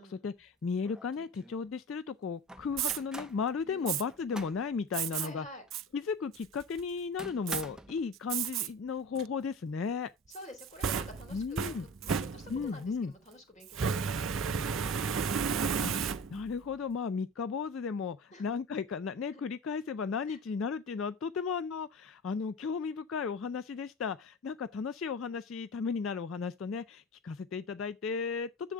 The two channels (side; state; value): both; normal; correlation 0.33